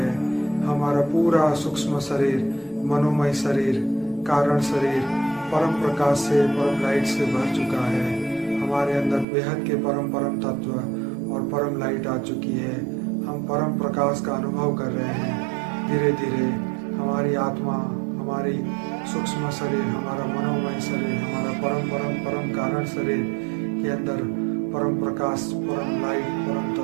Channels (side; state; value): left; drops out; at 9.2 s